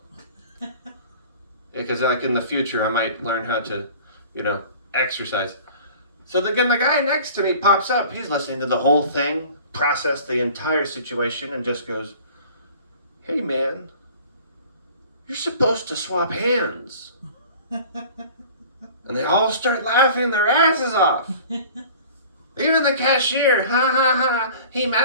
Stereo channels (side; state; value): both; inverted; correlation -0.45